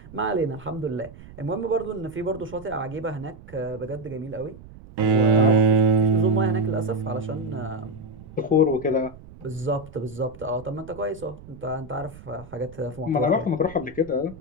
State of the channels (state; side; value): noise; right; rumble, 19 dB below the sound